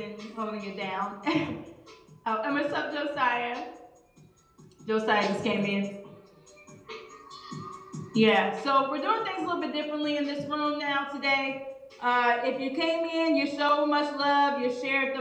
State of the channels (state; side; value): identical; both; correlation 1.00